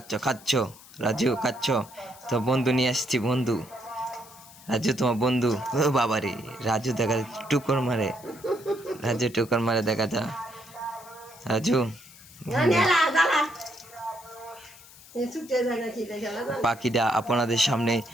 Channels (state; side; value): noise; left; hiss, 21 dB below the sound